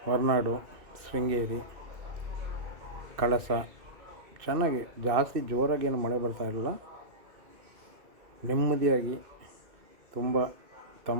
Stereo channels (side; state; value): left; late; 2.6 ms